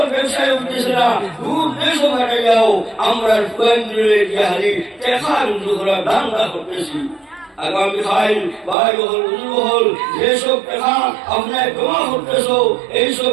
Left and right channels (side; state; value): left; drops out; at 8.8 s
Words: ব্যবসায় উঠতেছে না, দূর দেশ কাটে যাও, আমরা কেন্দ্রে হারি টেকা রুজু করা ধান্দা করতেছি। আগামী খাইল ভাই হল, উজু হল, যেসব টেকা আপনার জমা করতেছ এইসব